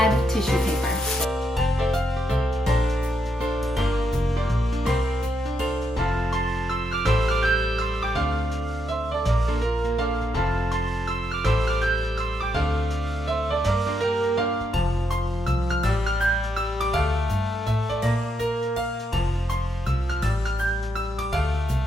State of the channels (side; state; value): both; normal; correlation 0.80